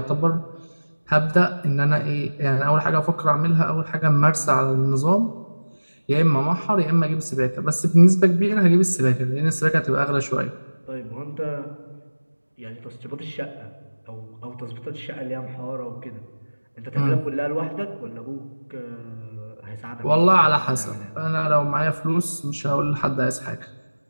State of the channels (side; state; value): both; inverted; correlation -1.00